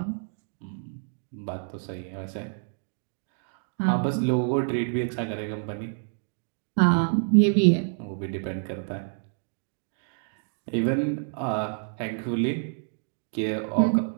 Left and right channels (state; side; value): silent; left; digital silence